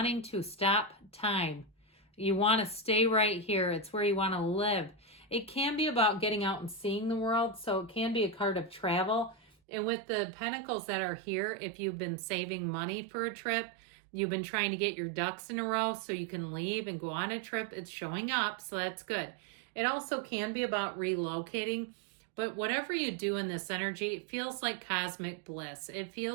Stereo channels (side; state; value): left; drops out; at 9.5 s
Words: to stop time. You want to stay right here. It's where you want to live. It can be about getting out and seeing the world. So it can be a card of travel. And with the pentacles that are here, if you've been saving money for a trip, you've been trying to get your ducks in a row so you can leave and go on a trip, it's showing up. So that's good. It also can be about relocating, but whatever you do in this energy, it feels like cosmic bliss. It